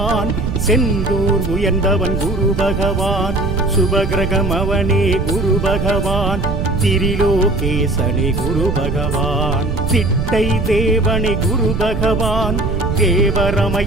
செந்தூர் உயர்ந்தவன் குரு பகவான், சுபகிரகம் அவனே குரு பகவான், திரிலோகேசனே குரு பகவான், திட்டை தேவனே குரு பகவான்,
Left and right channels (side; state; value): right; noise; rumble, 1 dB below the sound